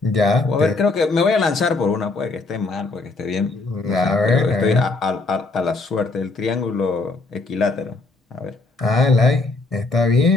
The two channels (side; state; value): right; quieter; 3.4 dB